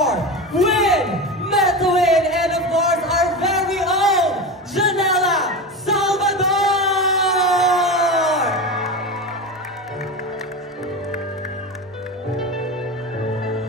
Win Metuin and of course our very own Janela Salvador!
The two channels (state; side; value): normal; both; correlation 0.24